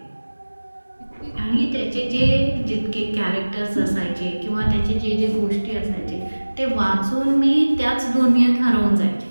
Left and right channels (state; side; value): inverted; both; correlation -1.00